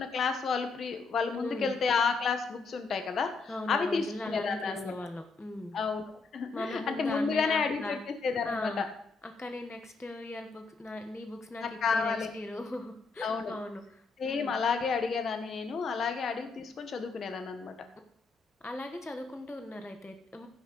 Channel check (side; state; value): right; quieter; 4.4 dB